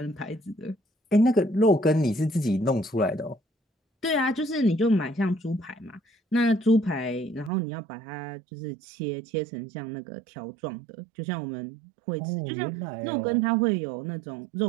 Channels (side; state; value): left; drops out; at 7.5 s